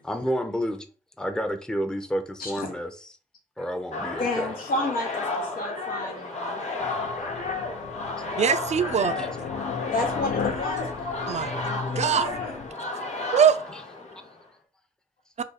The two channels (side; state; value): both; normal; correlation 0.31